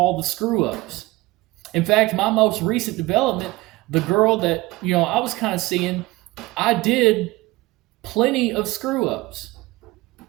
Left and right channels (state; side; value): quieter; left; 20.2 dB